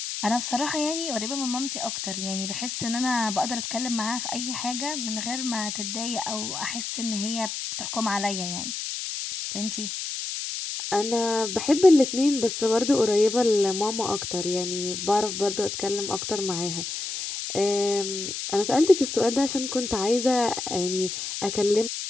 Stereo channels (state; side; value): noise; left; hiss, 5 dB below the sound